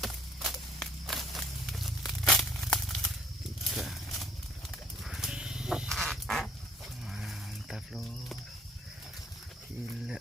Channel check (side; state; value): both; normal; correlation 0.60